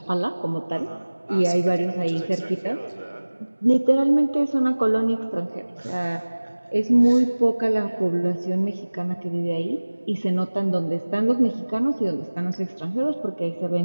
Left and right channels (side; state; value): both; inverted; correlation -1.00